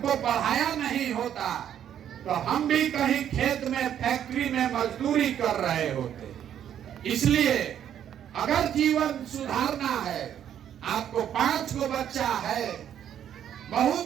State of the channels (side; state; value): left; quieter; 9.8 dB